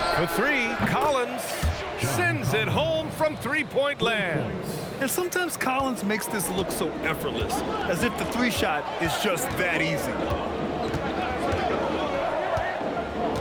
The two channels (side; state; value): both; identical; correlation 1.00